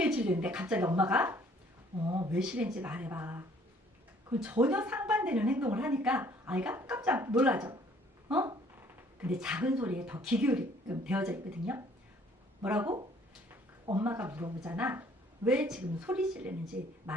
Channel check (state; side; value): normal; both; correlation 0.59